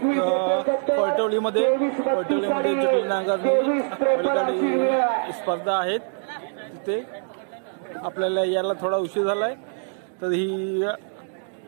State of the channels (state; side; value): silent; left; digital silence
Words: पैठवलीमध्ये जटिल नांगरणी स्पर्धा आहेत. तिथे आपल्याला यायला थोडा उशीर झालाय, तर ही